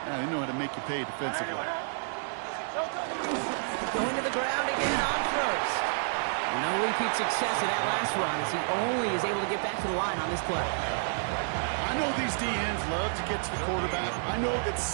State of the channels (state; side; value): silent; left; 58 dB below the other